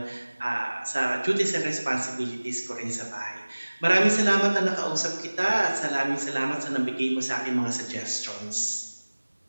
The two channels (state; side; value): inverted; both; correlation -1.00